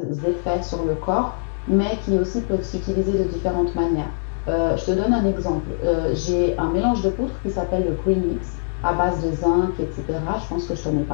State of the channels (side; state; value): right; silent; 64 dB below the other